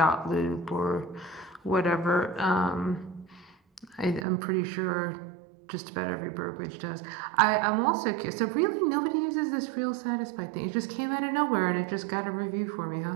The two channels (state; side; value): drops out; left; at 4.2 s